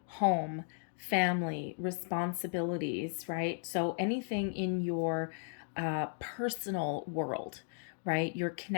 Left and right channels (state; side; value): silent; right; digital silence